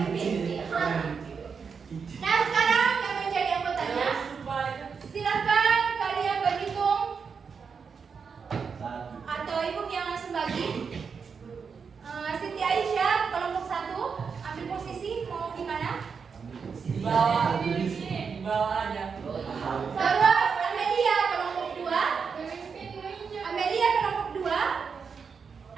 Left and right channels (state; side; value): quieter; left; 5.8 dB